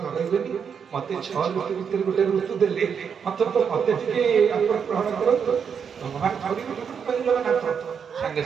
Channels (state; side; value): quieter; left; 6.9 dB